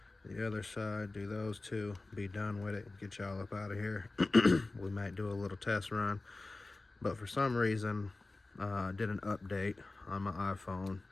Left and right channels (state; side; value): quieter; right; 3.2 dB